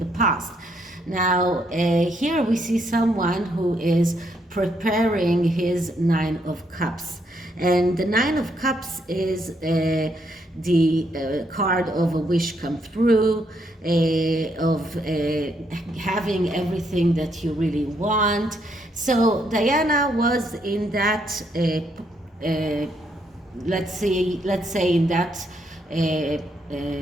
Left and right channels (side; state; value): both; normal; correlation 0.74